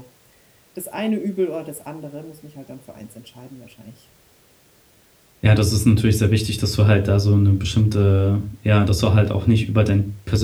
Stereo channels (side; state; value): both; identical; correlation 1.00